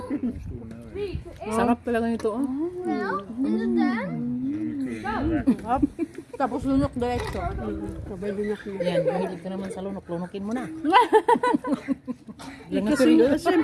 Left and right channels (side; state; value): both; identical; correlation 1.00